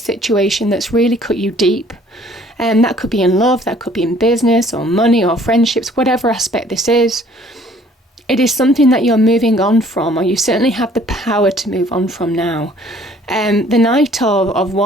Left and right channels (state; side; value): normal; both; correlation 0.57